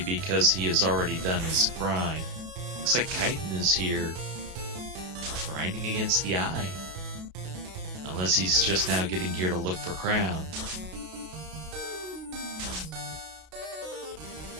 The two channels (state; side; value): late; left; 33 ms